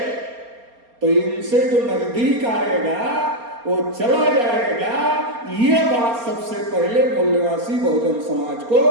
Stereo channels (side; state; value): left; late; 4.3 ms